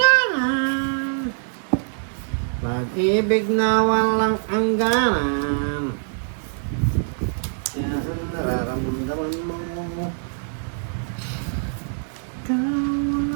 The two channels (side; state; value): left; silent; digital silence